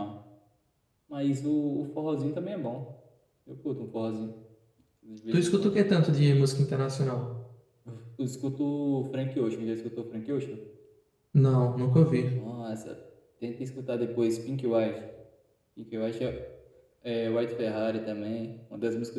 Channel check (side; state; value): both; identical; correlation 1.00